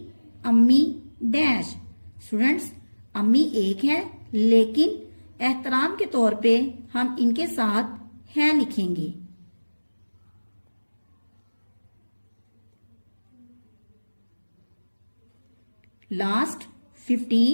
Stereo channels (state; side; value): inverted; both; correlation -1.00